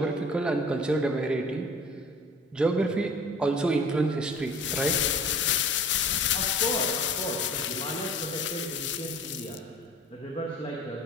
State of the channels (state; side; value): normal; both; correlation 0.45